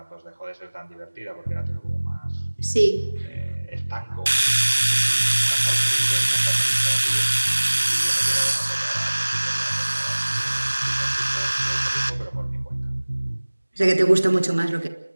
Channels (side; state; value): both; inverted; correlation -1.00